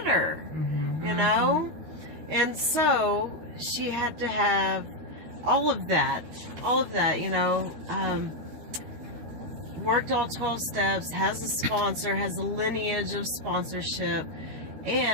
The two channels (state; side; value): late; left; 13 ms